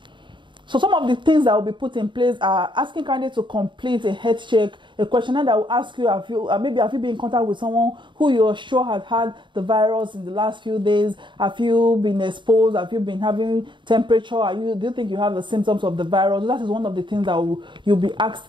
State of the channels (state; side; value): late; left; 0.23 ms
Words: So some of the things that will be put in place are asking candidates to complete a health check, a questionnaire that will ask you, have you been in contact with someone who you're sure has had the virus in the last few days? Have you been exposed? Have you been having temperature? Do you think you have the symptoms of the virus? That is one of the things that you'll be asked